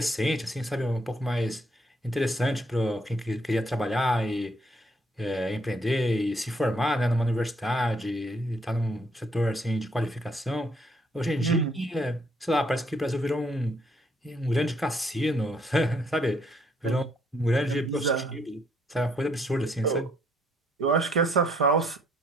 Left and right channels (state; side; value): normal; both; correlation 0.69